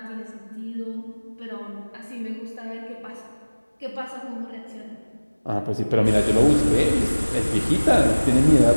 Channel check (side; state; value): both; inverted; correlation -1.00